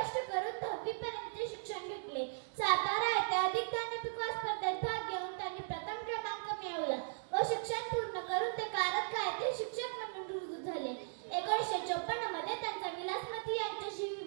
करून 10वी पर्यंतचे शिक्षण घेतले. सातारा येथे अधिक ज्ञानपिक स्पर्धेत भाग घेऊन त्यांनी प्रथम क्रमांक मिळवला व शिक्षण पूर्ण करून ते कारंजा येथे शिक्षक म्हणून रुजू झाले. 1954 मध्ये त्यांचा विलासमती यांच्याशी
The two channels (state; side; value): silent; left; digital silence